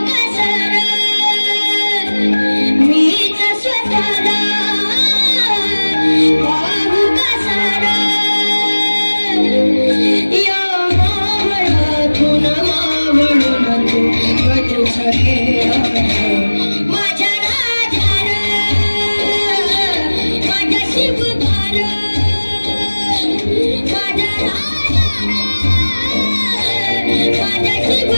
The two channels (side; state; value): both; inverted; correlation -1.00